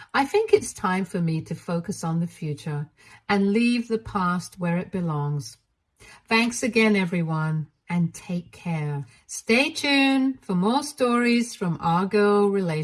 I think it's time for me to focus on the future and leave the past where it belongs. Thanks again, everyone, and take care. Stay tuned for more stories from our girl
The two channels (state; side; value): identical; both; correlation 1.00